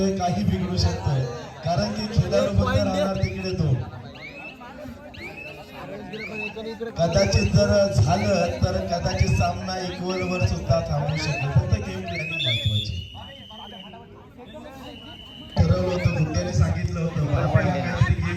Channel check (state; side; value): identical; both; correlation 1.00